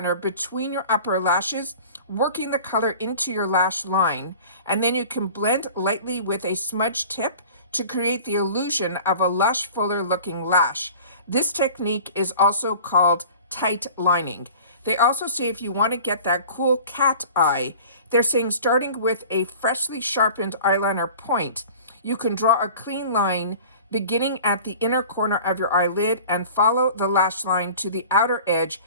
between your upper lashes, working the color into your lash line. And then you can blend lightly with a smudge tip to create the illusion of a lush, fuller looking lash. This technique is also called tight lining. They also say if you want to get that cool cat eye, they're saying starting with a freshly sharpened eyeliner point, you can draw a clean line beginning at the inner corner of your eyelid and follow the lash line to the outer edge,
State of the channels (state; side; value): inverted; both; correlation -0.42